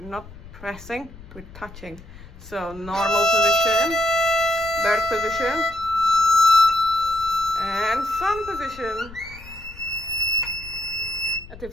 not pressing, we're touching. So normal position, bird position, and sun position. And if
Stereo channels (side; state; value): left; noise; rumble, 17 dB below the sound